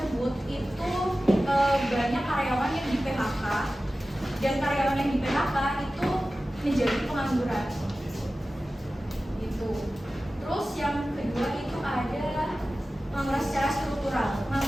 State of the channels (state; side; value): normal; both; correlation 0.95